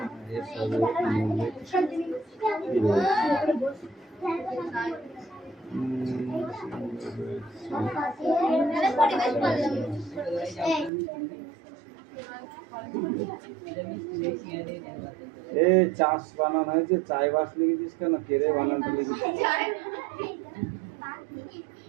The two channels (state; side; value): drops out; left; at 10.9 s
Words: এ চাষ বানান হয়েছে, চাই বাস লিখেছিস কেন? কেড়ে বানানটা লিখেছিস?